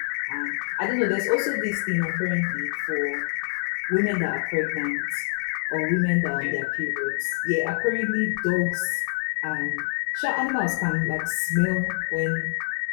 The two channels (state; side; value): silent; right; digital silence